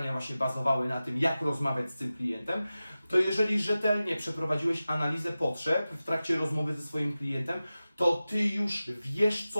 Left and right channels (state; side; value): inverted; both; correlation -0.95